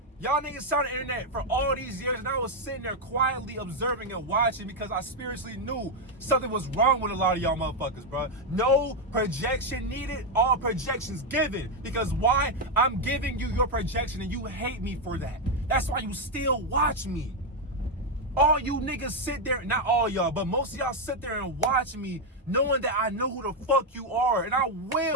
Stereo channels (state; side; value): normal; both; correlation 0.03